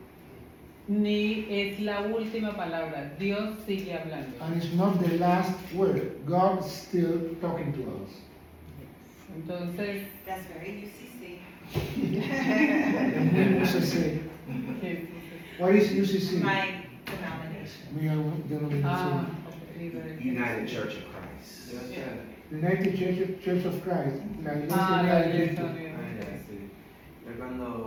ni es la última palabra. Dios sigue hablando. And it's not the last word. God's still talking to us. Entonces, That's very UCC. UCC. What is UCC? My denomination. United Church of Christ. United Church of Christ. La iglesia Es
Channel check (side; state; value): both; identical; correlation 1.00